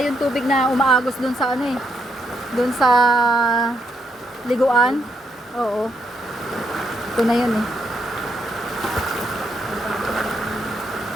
yung tubig na umaagos dun sa ano eh. Dun sa liguan. Oo. Ito na yun eh.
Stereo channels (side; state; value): both; normal; correlation 0.78